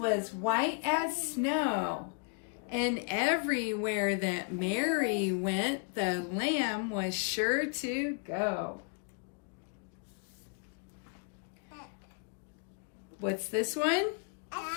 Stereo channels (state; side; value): quieter; right; 39.4 dB